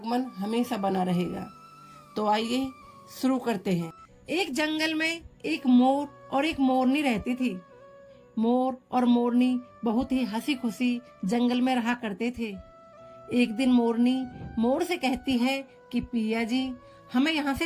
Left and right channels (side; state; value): both; identical; correlation 1.00